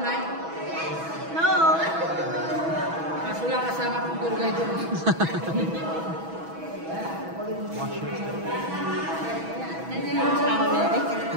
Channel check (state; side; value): late; left; 6.1 ms